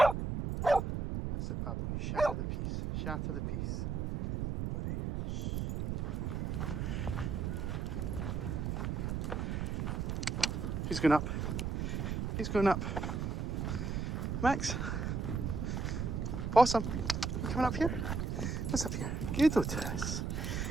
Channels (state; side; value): noise; right; rumble, 1 dB below the sound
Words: it, Pablo. You shatter the piece. Shatter the piece, buddy. He's going up. He's going up. Max. Possum. You coming up here? What's up here? Good, Otis.